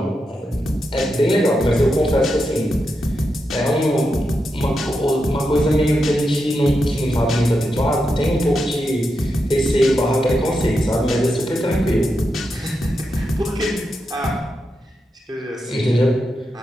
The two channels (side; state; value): both; normal; correlation 0.86